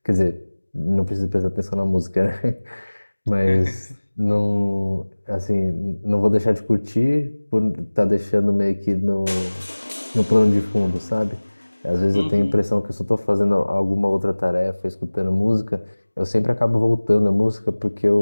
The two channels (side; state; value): both; inverted; correlation -1.00